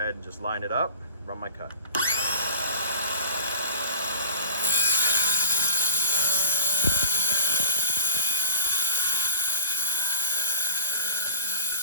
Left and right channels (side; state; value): both; inverted; correlation -0.40